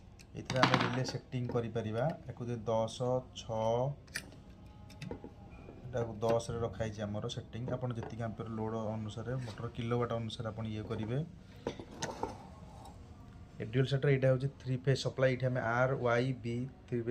आम रिले सेटिंग कर 10 6 10 रखाई आमर सेटिंग आपड़ जी एम्पियर लोड अनुसार मोटर किलोवाट अनुसार आप ये करेंगे ड्यूअल स्टार्टर यहाँ हूँ 3 फेज सप्लाई ये R Y B 3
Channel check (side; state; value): both; identical; correlation 1.00